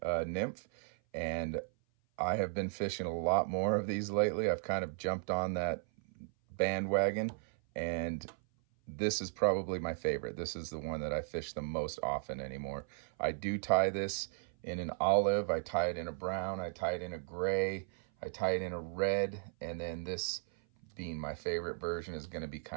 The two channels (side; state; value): left; silent; 54 dB below the other